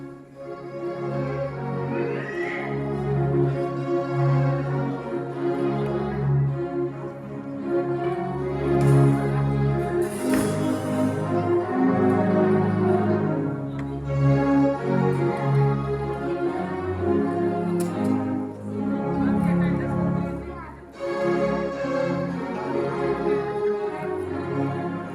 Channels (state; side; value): identical; both; correlation 1.00